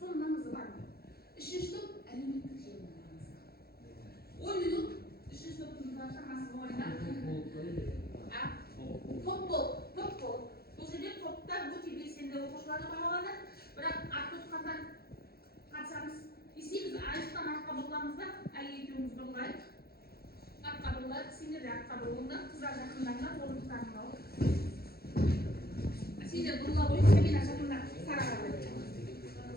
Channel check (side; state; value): right; late; 0.45 ms